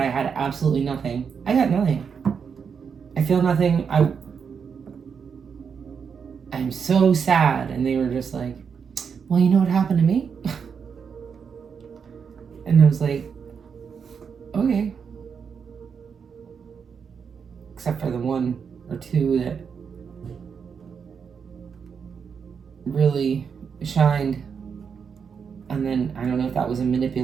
had absolutely nothing. I got nothing. I feel nothing. I'm so sad. And they were just like, well, you know what happened to me? And I was like, okay. Except for the 1 or 2 that really shined. And then, I don't know if that was a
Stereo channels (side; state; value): left; quieter; 6.5 dB